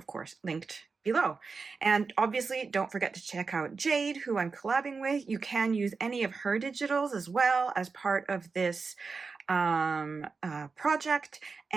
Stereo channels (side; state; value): left; quieter; 4.6 dB